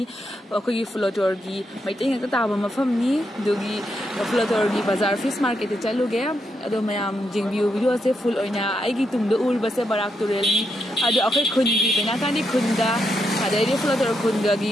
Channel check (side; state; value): both; normal; correlation 0.81